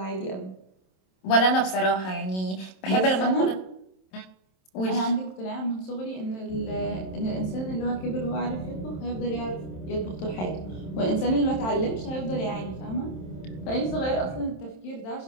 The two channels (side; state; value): right; late; 27 ms